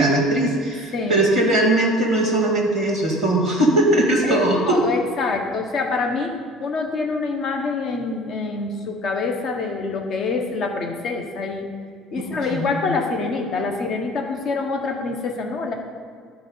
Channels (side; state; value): both; normal; correlation 0.43